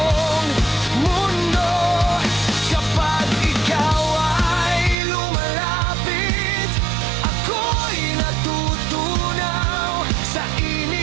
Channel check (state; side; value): drops out; left; at 5.0 s